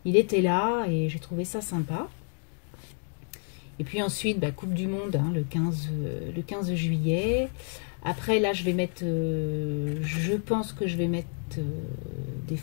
il était là et j'ai trouvé ça sympa. Et puis ensuite, bah, Coupe du Monde, hein, le 15 juillet. Après, là, je vais mettre, je pense que je vais mettre des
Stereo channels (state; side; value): silent; right; 58 dB below the other